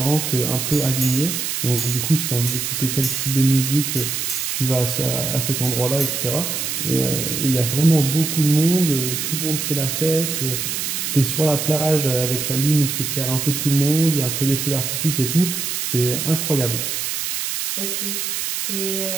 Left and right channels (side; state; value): right; noise; hiss, 2 dB below the sound